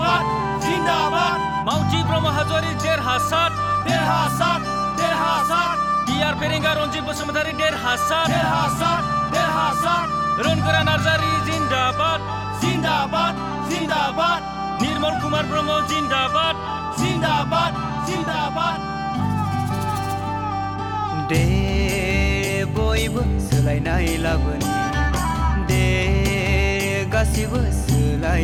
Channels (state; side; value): identical; both; correlation 1.00